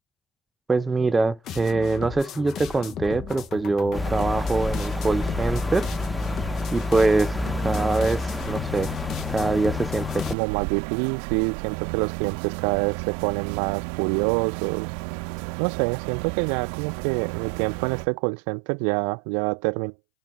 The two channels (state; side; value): drops out; left; at 10.4 s